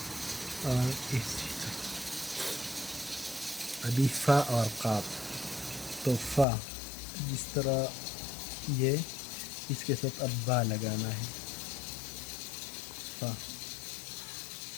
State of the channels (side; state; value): right; drops out; at 6.5 s